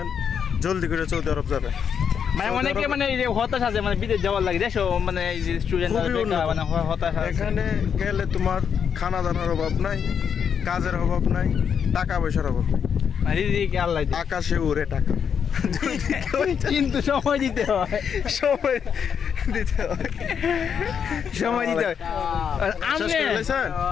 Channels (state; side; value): quieter; right; 7.4 dB